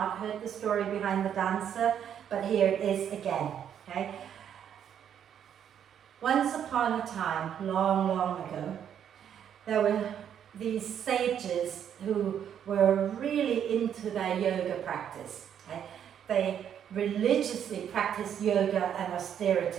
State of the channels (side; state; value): left; quieter; 9.0 dB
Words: heard the story behind the dancer, but here it is again. Okay? Once upon a time, long, long ago, there were these sages who were really into their yoga practice. Okay? They religiously practiced yoga and